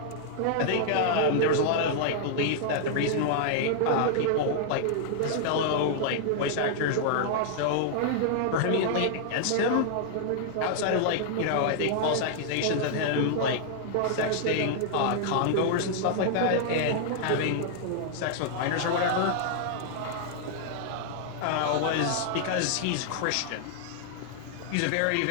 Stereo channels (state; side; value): different; both; correlation -0.01